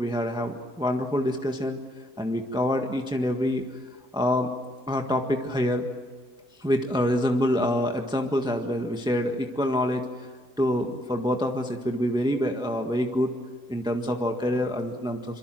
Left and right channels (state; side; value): normal; both; correlation 0.71